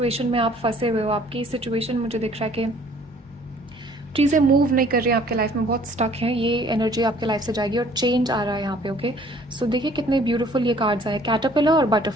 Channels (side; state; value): both; normal; correlation 0.56